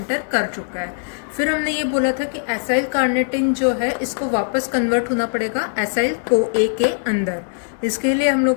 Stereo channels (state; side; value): silent; right; digital silence